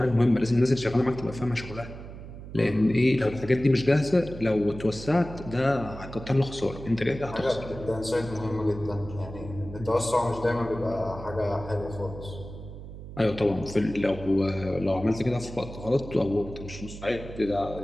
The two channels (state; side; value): noise; right; hum, 12 dB below the sound